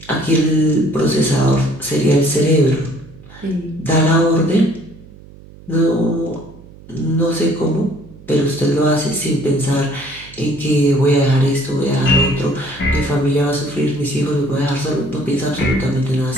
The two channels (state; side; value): noise; right; hum, 21 dB below the sound